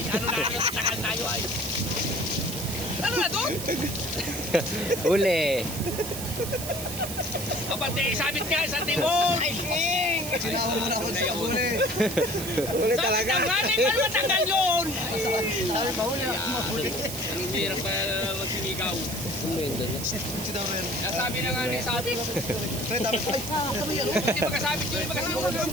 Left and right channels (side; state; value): right; noise; hiss, 7 dB below the sound